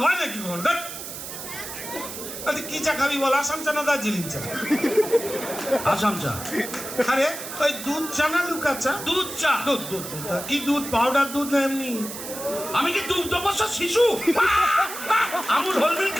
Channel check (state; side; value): noise; right; hiss, 9 dB below the sound